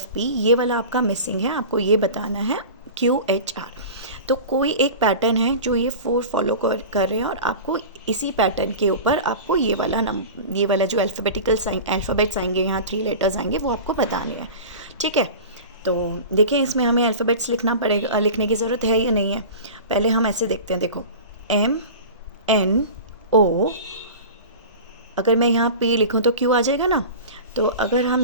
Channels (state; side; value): inverted; both; correlation -0.34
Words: ये वाला आपका मिसिंग है, आपको ये बताना है QHR। तो कोई एक पैटर्न है जो ये 4 फॉलो कर रहे हैं और आपको इसी पैटर्न के ऊपर आपको ये वाला जो अल्फ़ाबेट्स आएंगे, यहाँ 3 लेटर्स आएंगे, वो आपको बताने हैं। ठीक है, तो देखें इसमें हमें अल्फ़ाबेट्स लिखना पड़ेगा, लिखने की ज़रूरत है या नहीं है? पहले हम ऐसे देखते हैं। देखो MNO, अगर मैं यहाँ P लिखूँ तो Q आ जाएगा ना। तो अगर हम